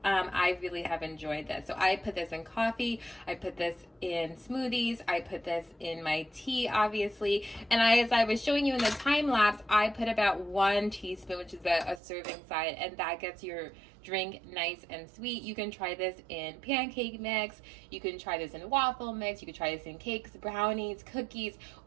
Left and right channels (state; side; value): drops out; left; at 12.0 s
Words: I really have enjoyed this. So I put this in coffee. I put this in smoothies. I put this in my tea, obviously. And as I was showing you in the time lapse, I put about 1 teaspoon, which is a serving size, and that gets your drink nice and sweet. You can try this in pancake mix. You can try this in waffle mix. You can try this in cakes, brownies, cookies,